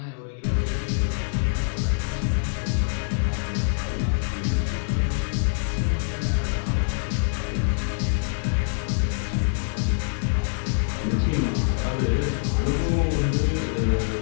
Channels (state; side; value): silent; right; digital silence